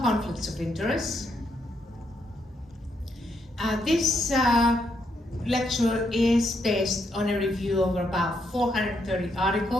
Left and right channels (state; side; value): normal; both; correlation 0.77